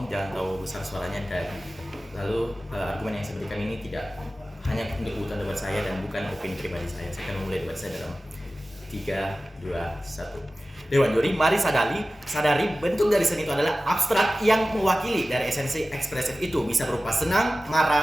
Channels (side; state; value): both; normal; correlation 0.96